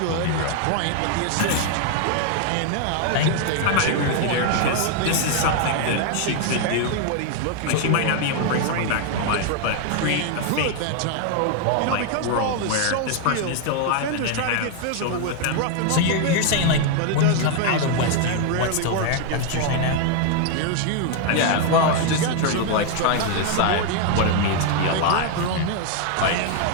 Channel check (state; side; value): different; both; correlation 0.00